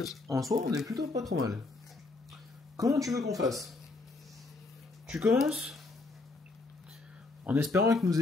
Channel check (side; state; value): right; quieter; 3.3 dB